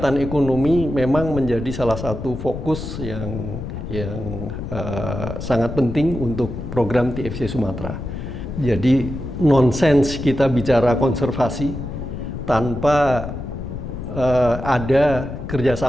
ekonomi memang menjadi salah satu fokus yang sangat penting untuk program TFC Sumatera. Jadi nonsens kita bicara konservasi tanpa ada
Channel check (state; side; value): noise; left; rumble, 7 dB below the sound